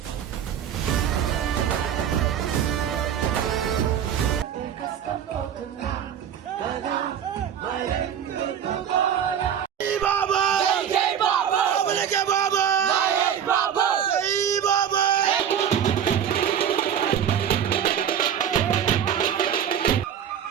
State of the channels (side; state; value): left; quieter; 9.0 dB